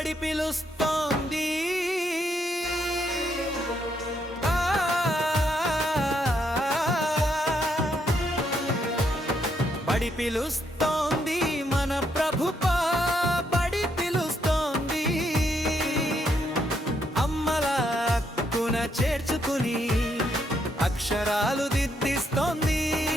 పిలుస్తోంది బడి పిలుస్తోంది మన ప్రభుపా బడి పిలుస్తోంది అమ్మల హక్కున చేర్చుకుని అక్షరాలు దిద్దిస్తోంది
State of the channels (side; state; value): both; normal; correlation 0.75